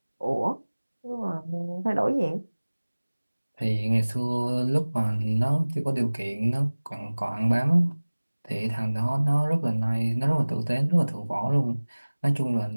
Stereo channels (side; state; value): both; inverted; correlation -1.00